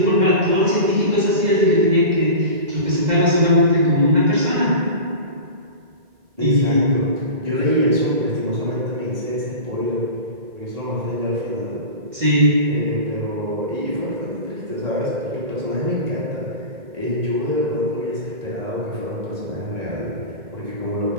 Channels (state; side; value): late; left; 2.1 ms